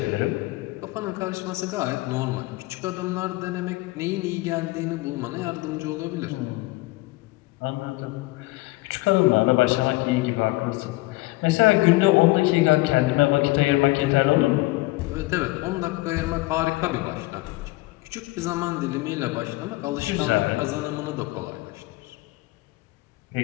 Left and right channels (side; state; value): right; quieter; 21.0 dB